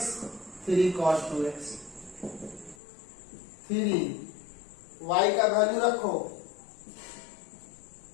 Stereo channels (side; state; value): right; drops out; at 2.8 s